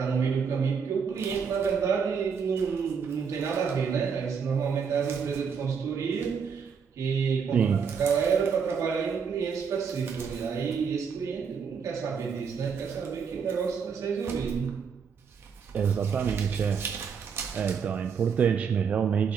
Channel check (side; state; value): left; quieter; 6.3 dB